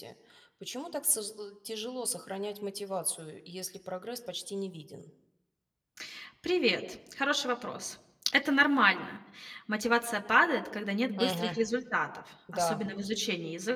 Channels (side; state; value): both; identical; correlation 1.00